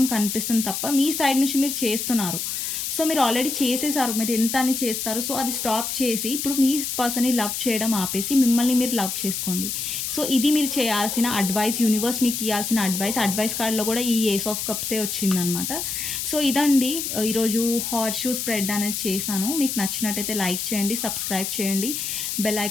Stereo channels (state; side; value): noise; left; hiss, 3 dB below the sound